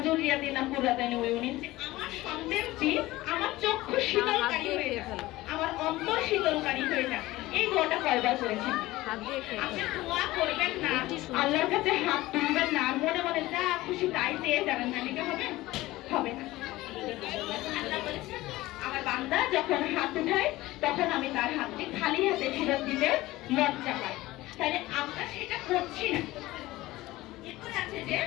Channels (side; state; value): right; quieter; 18.0 dB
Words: যুররিয়াতিনা কুররাতা আয়ুনিন, যে আমার সন্তানটি আমার চক্ষু শীতলকারী হয়ে যাক, আমার অন্তর শীতলকারী হয়ে যাক। এই দোয়াটা কয়বার করেছেন? আপনি দোয়া করবেন না, আল্লাহর কাছে হাত তুলবেন না, আর মনে মনে যা খুশি তাই চেয়ে যাবেন, না লিখে হবে না। আল্লাহ বলেছেন আমার বান্দা যখন হাত উঠায় তখন আমি তার হাতটি খালি হাতে ফেরত দিতে লজ্জা পাই, তাহলে আমরা সেটা করছি না। এরপরে আছে যে